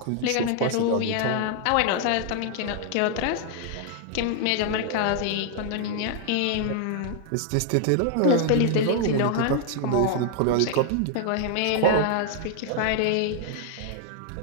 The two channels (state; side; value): different; both; correlation 0.00